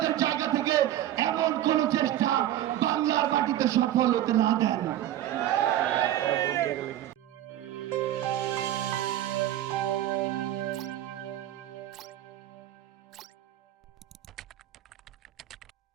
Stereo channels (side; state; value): left; quieter; 12.6 dB